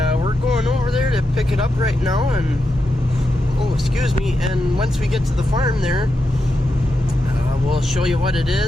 we're going over there to pick it up right now. And oh, excuse me, and once we get to the farm there, we'll show you what it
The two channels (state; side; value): normal; both; correlation 0.87